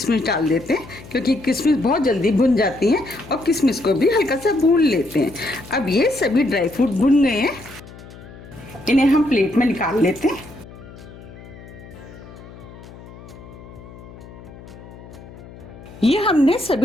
डाल देते हैं क्योंकि किशमिश बहुत जल्दी भुन जाती हैं और किशमिश को भी हल्का सा भून लेते हैं। अब ये सभी ड्राई फ्रूट भुन गए हैं, इन्हें हम प्लेट में निकाल लेते हैं। ये हमने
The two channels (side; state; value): left; noise; hum, 18 dB below the sound